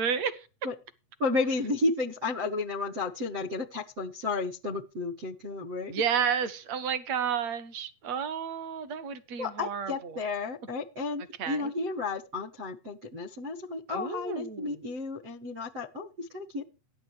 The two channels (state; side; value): late; left; 8.2 ms